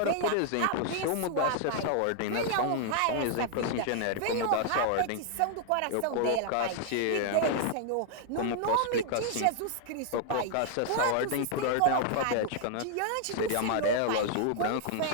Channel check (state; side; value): different; both; correlation -0.01